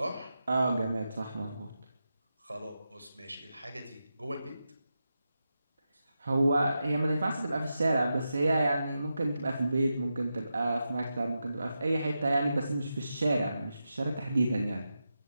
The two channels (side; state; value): both; inverted; correlation -0.89